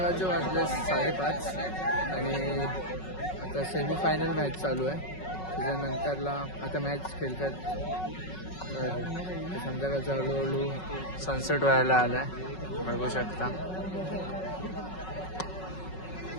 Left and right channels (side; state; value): right; late; 5.4 ms